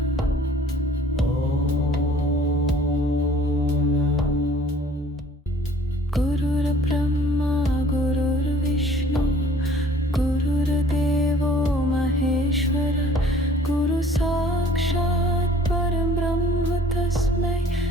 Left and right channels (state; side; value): normal; both; correlation 0.54